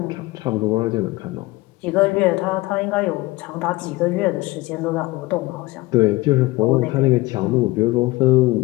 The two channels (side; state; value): right; quieter; 20.7 dB